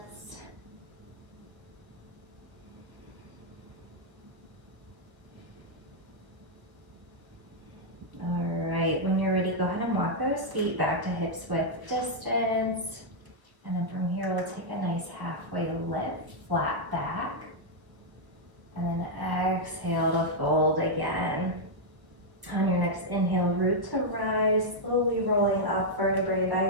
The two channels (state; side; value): late; left; 1.3 ms